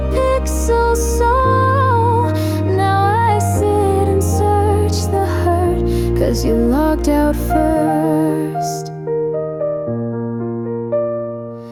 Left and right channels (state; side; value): identical; both; correlation 1.00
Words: pixel soul. Now I sit and search the hurt, 'cause you logged out first.